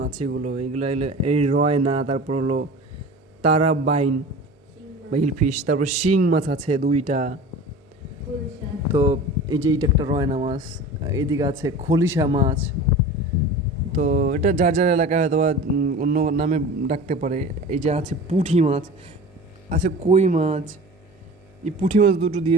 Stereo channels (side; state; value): both; normal; correlation 0.37